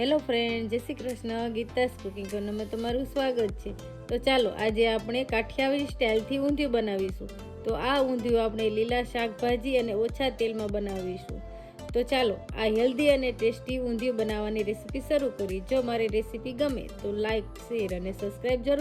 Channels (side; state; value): both; identical; correlation 1.00